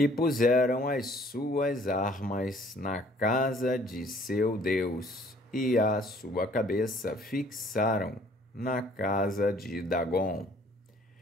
puseram as suas armas na casa de seu Deus, e a sua cabeça fixaram na casa de Dagom.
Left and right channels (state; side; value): normal; both; correlation 0.58